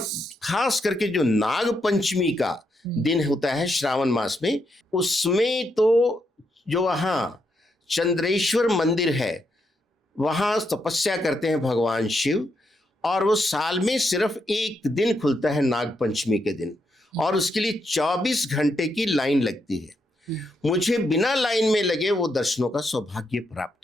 खास करके जो नाग पंचमी का दिन होता है श्रावण मास में, उसमें तो जो वहाँ चंद्रेश्वर मंदिर है वहाँ तपस्या करते हैं भगवान शिव, और वो साल में सिर्फ एक दिन खुलता है नाग पंचमी के दिन, और उसके लिए 24 घंटे की लाइन लगती है। मुझे बिना लाइन में लगे वो दर्शनों का सौभाग्य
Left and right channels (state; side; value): normal; both; correlation 0.80